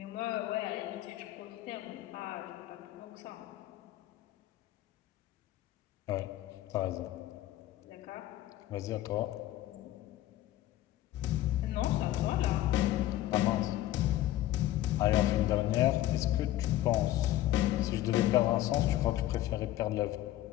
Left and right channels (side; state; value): right; quieter; 14.4 dB